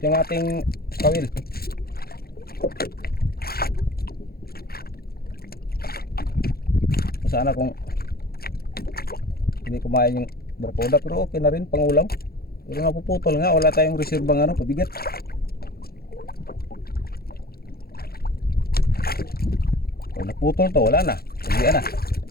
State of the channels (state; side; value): late; right; 0.44 ms